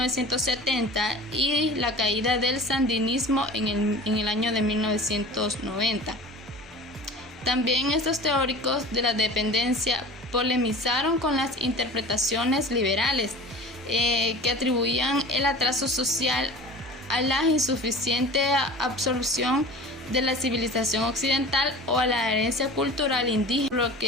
y la caída del sandinismo en el año de 1990. También estos teóricos de la dependencia polemizaron con las interpretaciones liberales que atribuían el atraso social a la insuficiente absorción de la civilización occidental o a la herencia cultural indígena, lo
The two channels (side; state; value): both; normal; correlation 0.39